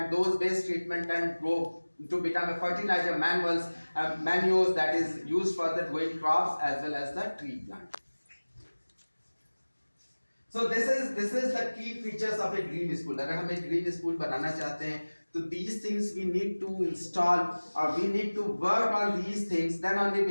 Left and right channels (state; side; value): inverted; both; correlation -1.00